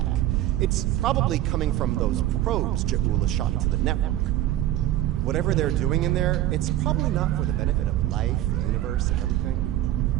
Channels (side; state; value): left; quieter; 13.7 dB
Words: It's probably coming from those probes Ja'ula shot into the network. Whatever they're doing in there, it's probably not for the benefit of life, the universe, and everything.